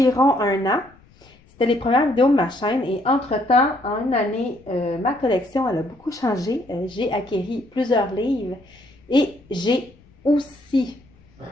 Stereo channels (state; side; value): noise; left; rumble, 29 dB below the sound